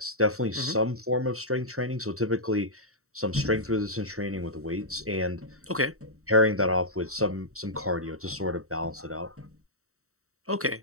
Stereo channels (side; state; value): left; late; 0.64 ms